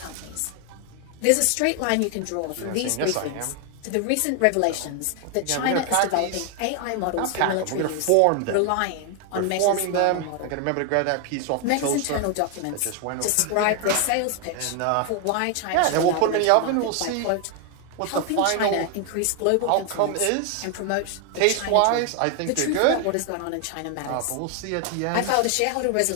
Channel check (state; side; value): different; both; correlation 0.00